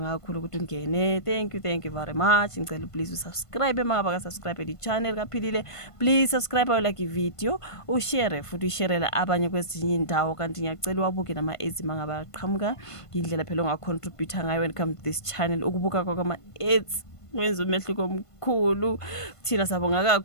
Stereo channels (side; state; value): right; late; 1.5 ms